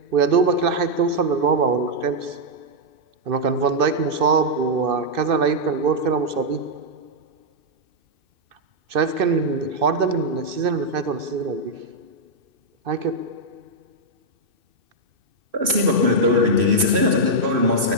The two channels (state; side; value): late; left; 2.6 ms